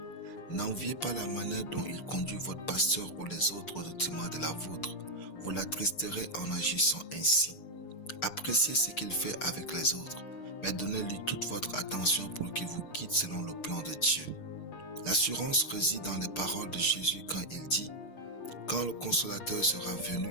N'enviez pas la manière dont il conduit votre pasteur ou les autres au détriment de la vôtre. Vous l'attristerez en agissant ainsi. Appréciez ce qu'il fait avec les autres, mais donnez-lui toute votre attention pour qu'il vous guide selon le plan de Dieu. L'assurance réside dans les paroles de Jésus quand il dit « Quand le Consolateur sera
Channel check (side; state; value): right; late; 6.6 ms